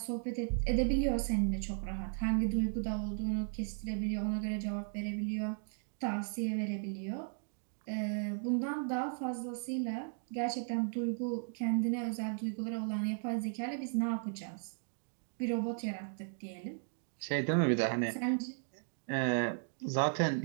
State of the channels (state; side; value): silent; left; digital silence